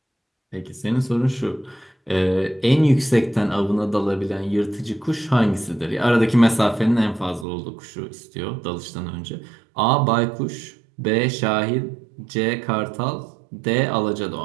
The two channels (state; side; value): drops out; left; at 7.5 s